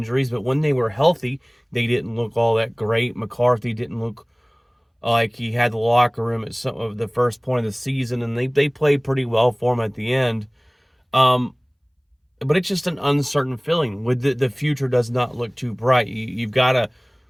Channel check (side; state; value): both; identical; correlation 1.00